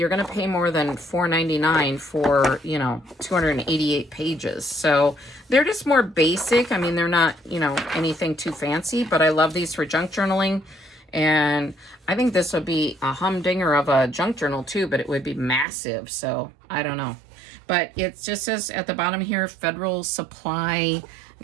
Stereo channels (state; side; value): drops out; left; at 15.7 s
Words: gonna pay more than $4.99 for, you know, 288 pages. So they're just more basic. I mean, they're not, you know, anything too fancy, but I love these for junk journaling. And I think this would be a humdinger of a junk journal too, but it would be massive. So I don't know. But it just says at the bottom here, Federal Supply, I